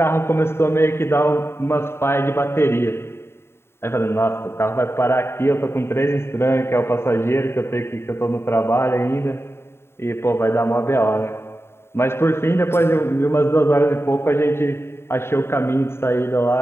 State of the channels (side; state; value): right; late; 0.12 ms